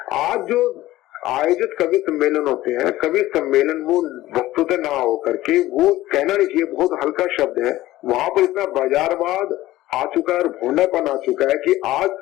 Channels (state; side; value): quieter; right; 16.2 dB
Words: आज जो आयोजित कवि सम्मेलन होते हैं, कवि सम्मेलन वो वस्तुतः ना हो करके, वो कहना नहीं चाहिए, बहुत हल्का शब्द है, वहां पर इतना बाजारवाद आ चुका है और भोंडापन आ चुका है कि आज